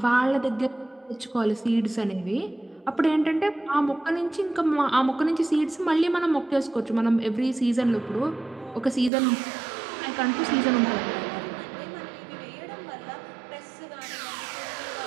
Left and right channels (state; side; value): drops out; left; at 9.1 s